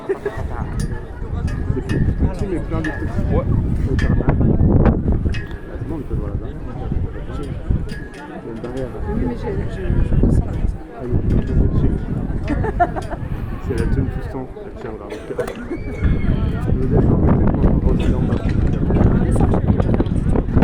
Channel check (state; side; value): identical; both; correlation 1.00